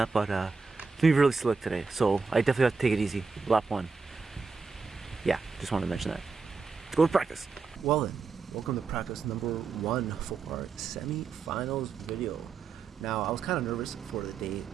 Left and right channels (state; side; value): quieter; left; 4.7 dB